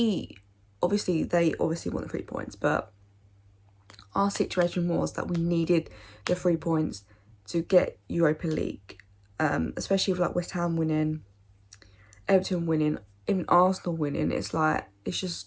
obviously want the 3 points, but our situation was that we needed the 3 points to get Europa League, especially with like West Ham winning, Everton winning, even Arsenal winning. It's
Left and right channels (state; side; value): identical; both; correlation 1.00